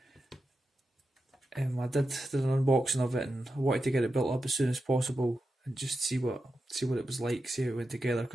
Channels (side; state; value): both; normal; correlation 0.90